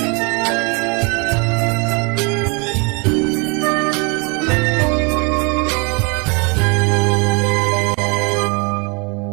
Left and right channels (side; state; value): left; quieter; 32.3 dB